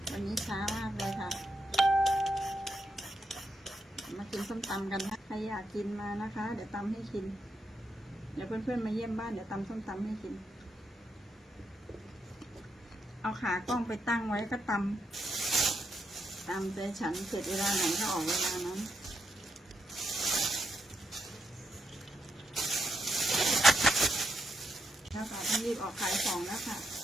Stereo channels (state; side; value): normal; both; correlation 0.81